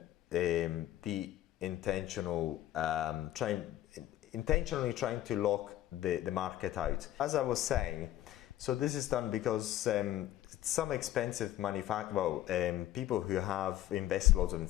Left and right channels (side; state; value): right; quieter; 13.7 dB